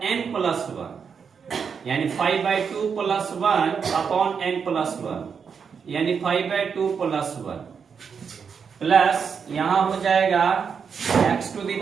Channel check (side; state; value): left; quieter; 6.4 dB